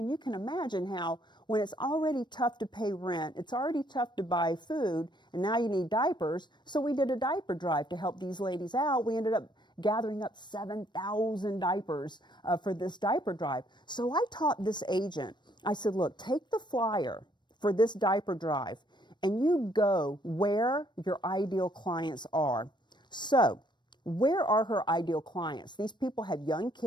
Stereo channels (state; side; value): late; right; 0.22 ms